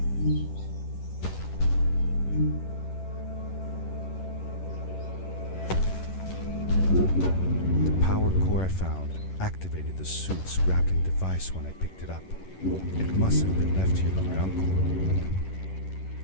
The power core I found activated the suit's grappling device when I picked it up. It must have been left here by my uncle.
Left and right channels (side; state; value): right; late; 11 ms